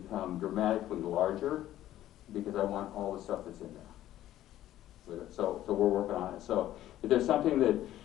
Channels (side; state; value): right; quieter; 13.3 dB